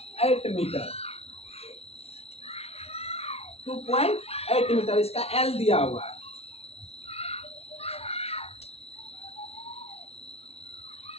मीटर। 2.8 मीटर इसका L दिया हुआ है।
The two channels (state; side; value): late; right; 0.30 ms